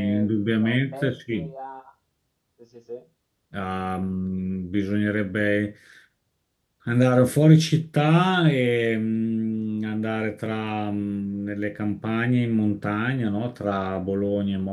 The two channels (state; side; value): identical; both; correlation 1.00